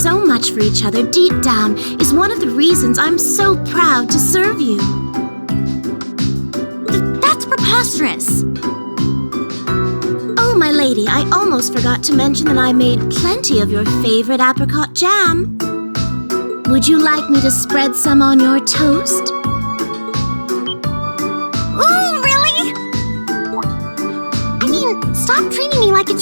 much for each other deep down is one of the reasons I'm so proud to serve you. That's preposterous. Oh, my lady, I almost forgot to mention that I made plenty of your favorite apricot jam. Would you like me to spread some on your toast? Ooh, really? I mean, stop treating me like a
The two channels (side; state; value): both; inverted; correlation -1.00